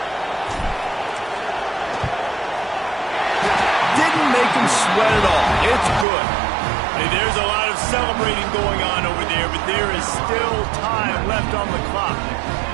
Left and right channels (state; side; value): drops out; left; at 6.1 s